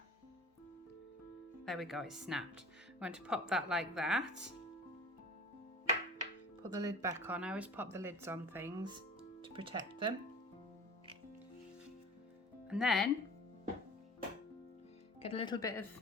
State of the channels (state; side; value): normal; both; correlation 0.41